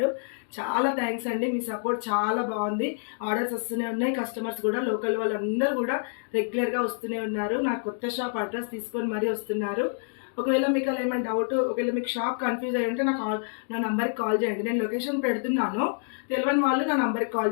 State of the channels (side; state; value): right; silent; digital silence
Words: చాలా థ్యాంక్స్ అండి, మీ సపోర్ట్ చాలా బాగుంది. ఆర్డర్స్ వస్తూనే ఉన్నాయి. కస్టమర్స్ కూడా లోకల్ వాళ్ళందరూ కూడా రెగ్యులర్గా వస్తూనే ఉన్నారు. నా కొత్త షాప్ అడ్రస్ తీసుకొని మరీ వస్తున్నారు. ఒకవేళ మీకు అలా ఏమైనా డౌట్, ఒకవేళ మీకు షాప్ కన్ఫ్యూజ్ అయ్యి ఉంటే నా నంబర్కి కాల్ చేయండి. నేను లొకేషన్ పెడుతున్నాను, తెలియని వాళ్ళు నా నంబర్కి కాల్